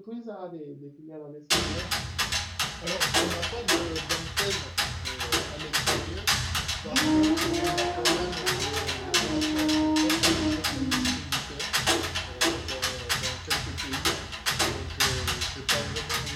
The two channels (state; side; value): identical; both; correlation 1.00